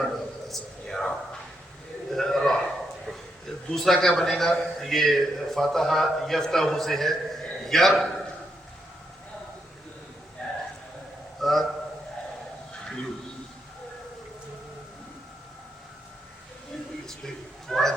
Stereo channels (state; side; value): normal; both; correlation 0.80